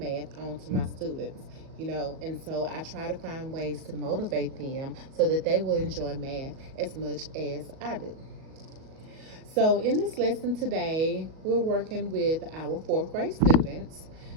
on to my students. And so I try to find ways to motivate them so that they will enjoy math as much as I do. So, in this lesson today, we're working with our fourth grade students.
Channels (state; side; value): late; left; 38 ms